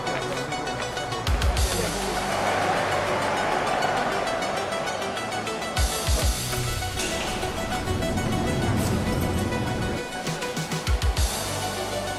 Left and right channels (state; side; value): identical; both; correlation 1.00